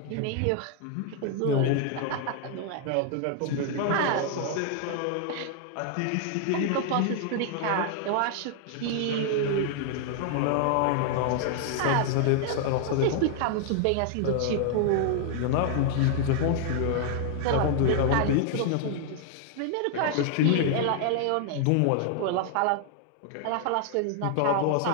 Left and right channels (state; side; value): different; both; correlation 0.00